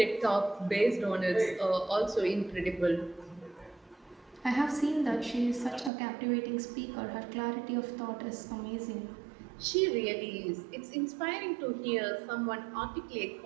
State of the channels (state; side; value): drops out; left; at 5.9 s